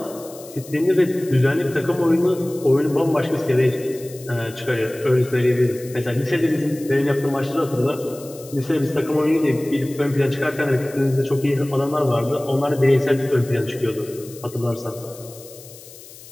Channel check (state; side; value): noise; left; hiss, 19 dB below the sound